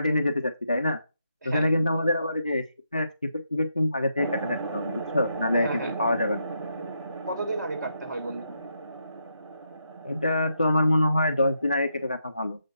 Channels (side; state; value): both; inverted; correlation -0.80